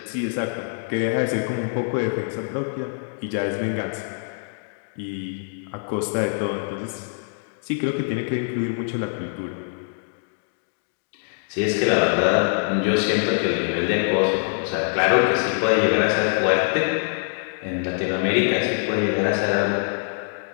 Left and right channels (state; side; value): silent; right; digital silence